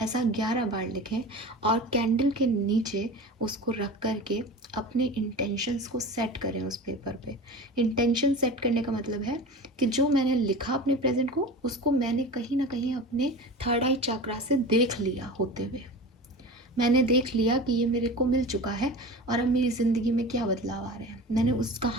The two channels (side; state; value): both; normal; correlation 0.33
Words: ऐसा 11 बार लिखें और कैंडल के नीचे उसको रख करके अपने इंटेंशंस को सेट करें उस पेपर पे। इंटेंशन सेट करने का मतलब है कि जो मैंने लिखा अपने प्रेजेंट को, उसको मैंने कहीं ना कहीं अपने थर्ड आई चक्रा से देख लिया होते हुए। मैंने देख लिया कि ये मेरे को मिल चुका है और अब मेरी ज़िंदगी में क्या बदलाव आ रहे हैं। मैंने उस